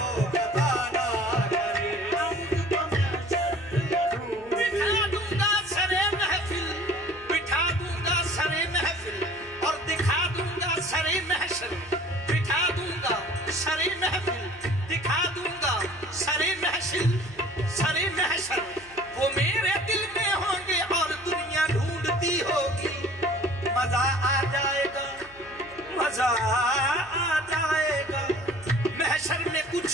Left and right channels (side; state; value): left; noise; hum, 23 dB below the sound